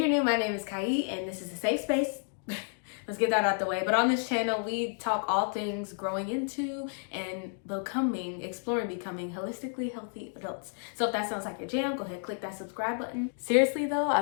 new, my name is Kai, and this is a safe space. Let's get that out the way. But on this channel, we talk all things growing into and exploring becoming holistically healthy adults. So if that sounds like your jam, go ahead and click that subscribe button. Seriously though,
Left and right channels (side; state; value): right; silent; 57 dB below the other